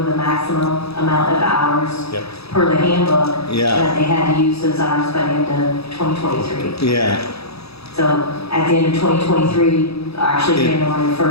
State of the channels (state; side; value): late; right; 0.78 ms